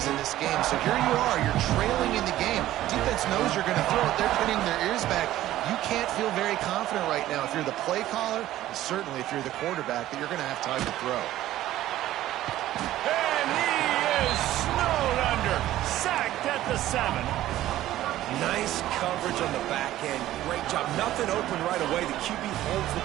in this game. So here you are, you're trailing in the game. Defense knows you're going to throw it. They're pinning their ears back. You can't feel very confident right now if you're the play caller, and certainly if you're the quarterback, that you're going to have time to throw. And he is snowed under. Sacked at the 7. Nice coverage on the back end. Great job. Nothing open right away. The QB holds the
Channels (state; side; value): quieter; left; 14.2 dB